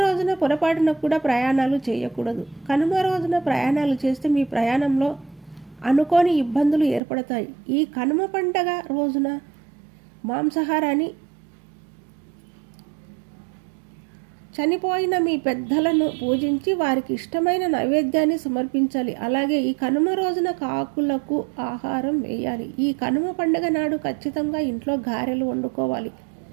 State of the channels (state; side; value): drops out; left; at 7.0 s